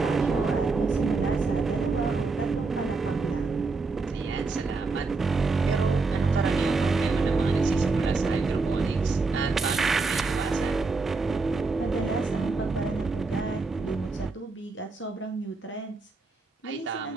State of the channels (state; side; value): quieter; left; 3.9 dB